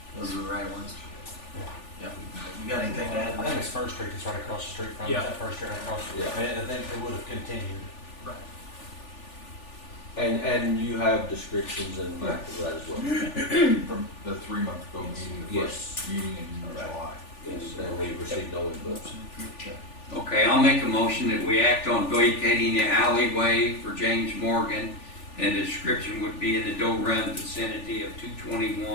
Those are the right ones? Yeah. You got anything to add? I think it's First Street, it's right across the street from, Yeah. that First Street right across the street. Yeah. I think they would have continued. And you have descriptions in the back of that as well. From the 3 month ago meeting, the Yes. first meeting in July. Yes, and we received no input. Okay, I'll make a motion that we act on vacating the alleyway for James Morgan, and the description would be in the Doe Run vicinity of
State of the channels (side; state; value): right; late; 3.4 ms